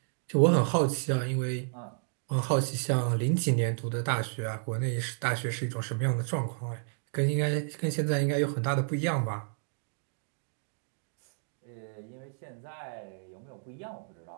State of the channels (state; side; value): silent; left; 57 dB below the other